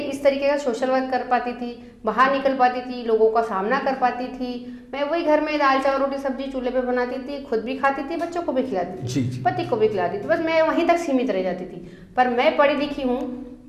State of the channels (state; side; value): identical; both; correlation 1.00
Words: इस तरीके का सोशल वर्क कर पाती थी, बाहर निकल पाती थी, लोगों का सामना कर पाती थी। मैं वही घर में दाल चावल रोटी सब्जी चूल्हे पे बनाती थी, खुद भी खाती थी, बच्चों को भी खिलाती थी, पति को भी खिलाती थी, बस मैं वहीं तक सीमित रह जाती थी। पर मैं पढ़ी लिखी हूँ